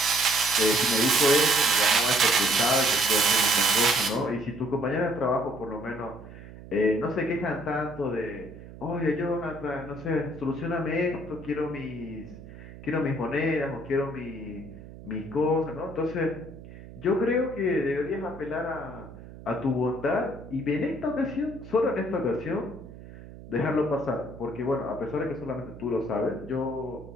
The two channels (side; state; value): right; noise; hum, 16 dB below the sound